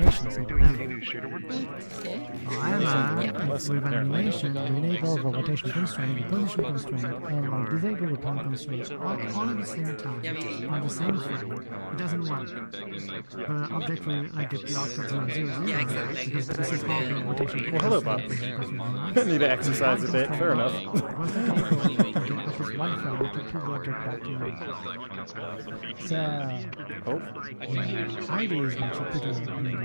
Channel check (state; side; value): inverted; both; correlation -1.00